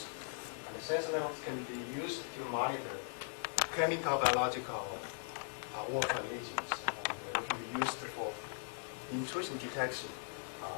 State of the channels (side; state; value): right; silent; digital silence